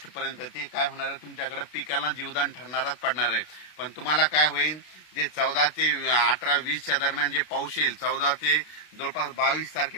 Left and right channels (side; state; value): right; late; 32 ms